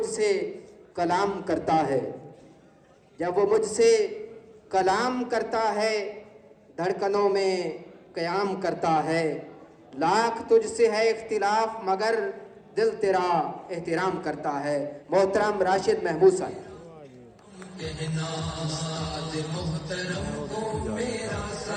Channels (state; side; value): identical; both; correlation 1.00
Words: سے کلام کرتا ہے، جب وہ مجھ سے کلام کرتا ہے، دھڑکنوں میں قیام کرتا ہے. لاکھ تجھ سے ہے اختلاف مگر دل تیرا احترام کرتا ہے. محترم راشد محمود صاحب. کہنا استاد محترم کو میرا